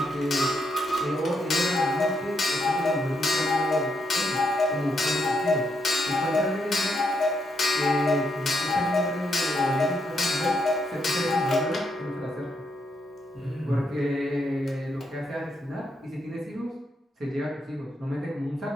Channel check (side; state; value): both; normal; correlation 0.78